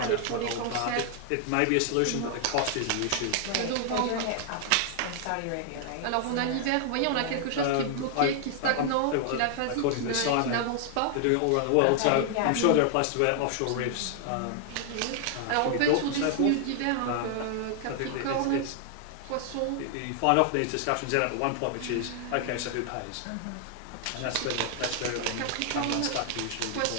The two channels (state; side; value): different; both; correlation 0.00